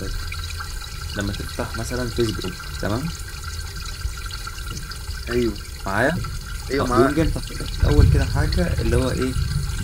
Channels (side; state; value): both; identical; correlation 1.00